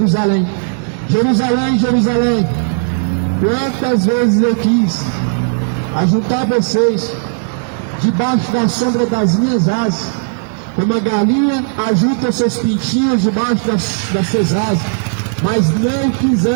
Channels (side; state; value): left; silent; digital silence